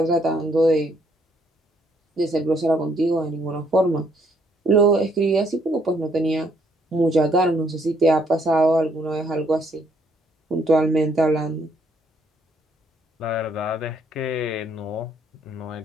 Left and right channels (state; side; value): normal; both; correlation 0.69